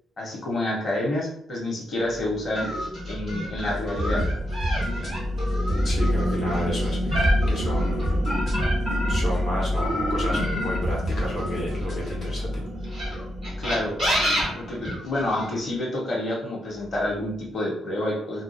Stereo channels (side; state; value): both; normal; correlation 0.84